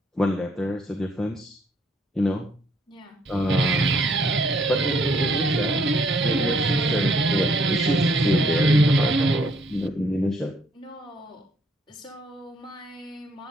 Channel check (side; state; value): both; normal; correlation 0.67